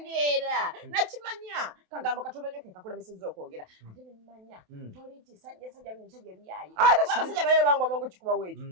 nakimanya kagambo katono nnyo ke kakulemesezza okwogera ate nemmanya toliti sajja musajja byaye abasajja bayo bangu amangu kikuba weeki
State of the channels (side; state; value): left; late; 28 ms